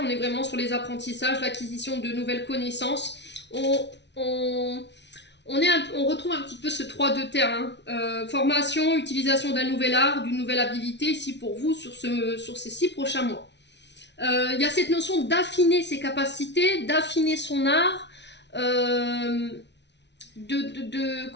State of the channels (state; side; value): late; right; 0.51 ms